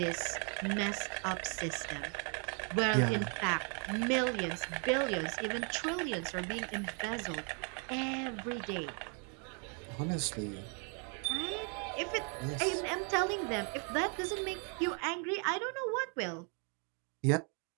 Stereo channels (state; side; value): quieter; left; 38.3 dB